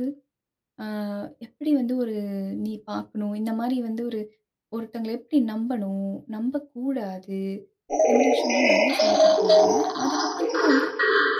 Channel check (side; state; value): both; identical; correlation 1.00